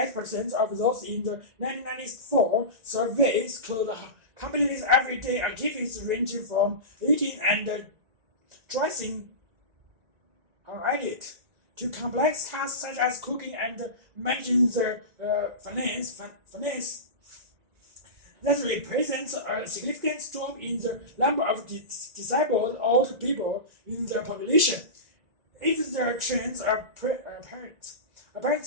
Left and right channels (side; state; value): left; late; 1.9 ms